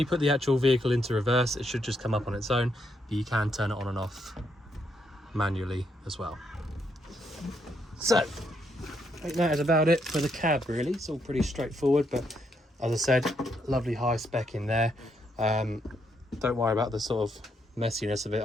put the actual vehicle into reverse, it should just come up on its own, but you can turn it on and off manually as well. So I think that is about it for the cab really. It's all pretty straightforward, but as I said, lovely high spec in there. Don't worry about the sort of messiness of it.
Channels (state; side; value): normal; both; correlation 0.76